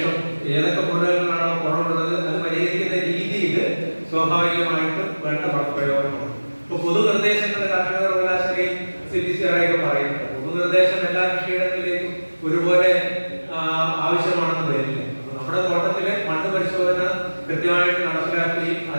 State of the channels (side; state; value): both; inverted; correlation -1.00